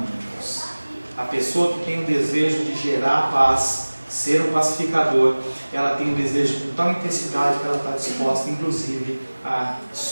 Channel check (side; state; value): both; inverted; correlation -1.00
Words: A pessoa que tem o desejo de gerar paz, ser um pacificador, ela tem um desejo com tal intensidade que ela está disposta, inclusive, a